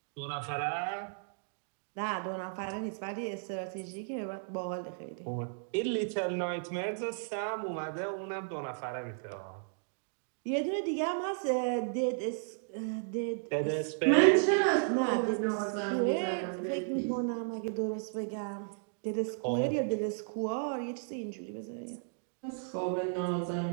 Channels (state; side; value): silent; left; digital silence